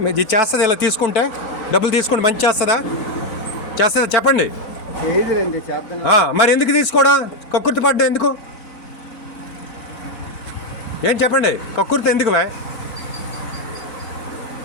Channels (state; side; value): late; right; 4.4 ms